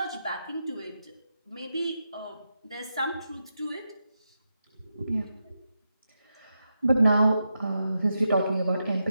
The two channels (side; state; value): both; inverted; correlation -0.87